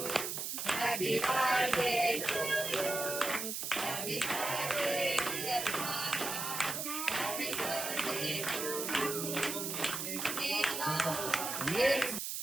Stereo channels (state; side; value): noise; right; hiss, 3 dB below the sound